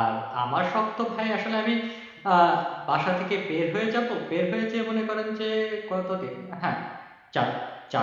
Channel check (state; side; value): identical; both; correlation 1.00